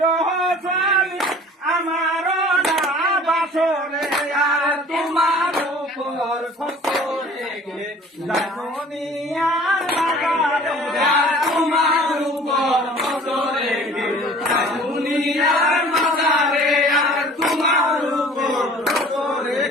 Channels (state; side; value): normal; both; correlation 0.48